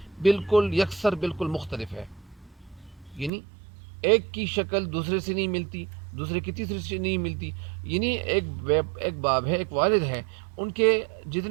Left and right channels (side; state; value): left; drops out; at 3.3 s